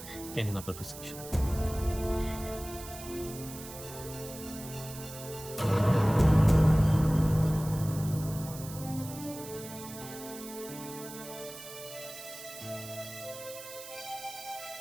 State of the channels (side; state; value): right; noise; hiss, 13 dB below the sound